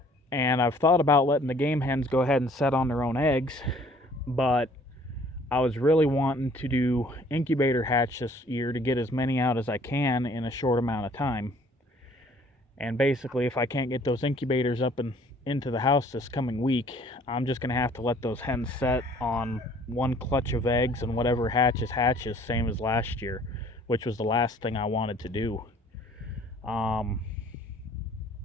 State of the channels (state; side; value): normal; both; correlation 0.56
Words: And I've thought about letting the game hens go ahead and set on their own eggs, but I was really wanting to do incubator hatch this year to get as many out as I can in a short amount of time. And basically, if I can't get those incubators up and into the house this coming week, I'm just going to have to let those hens set on one clutch of eggs, and whatever hatches, same as last year, which was the last thing I wanted to do.